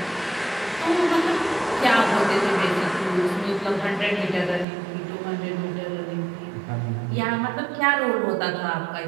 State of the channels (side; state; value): left; drops out; at 4.7 s